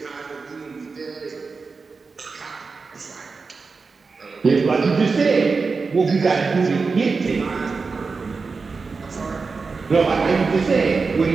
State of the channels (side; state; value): left; quieter; 4.5 dB